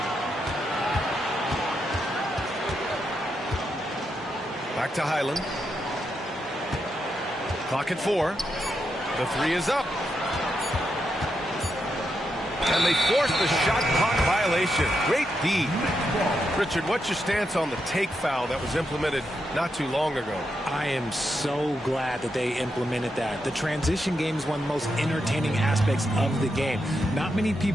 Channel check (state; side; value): normal; both; correlation 0.83